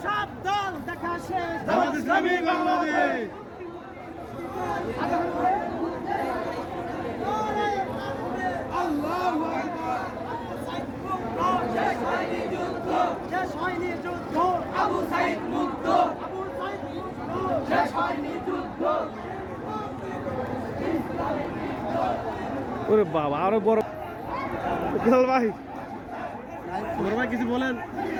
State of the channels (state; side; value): identical; both; correlation 1.00